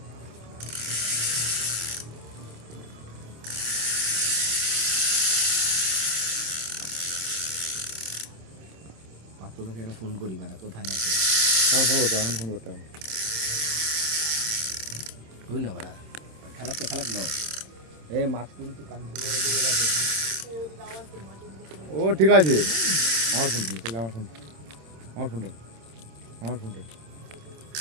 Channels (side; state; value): left; late; 26 ms